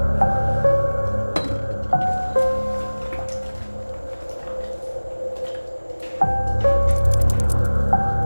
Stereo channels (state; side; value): inverted; both; correlation -1.00